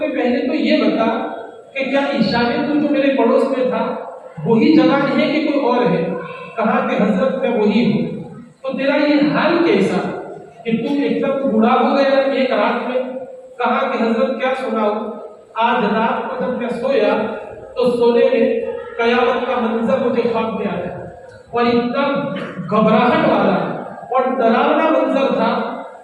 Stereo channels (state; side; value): identical; both; correlation 1.00